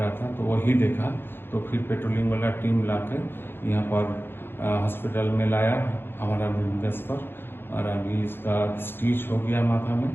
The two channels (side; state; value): right; late; 0.10 ms